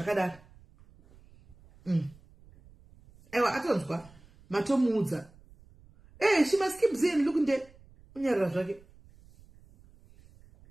Aiwa atonzwa matomuudza. She must keep saying look nde unyarara zvake.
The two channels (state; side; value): noise; right; rumble, 26 dB below the sound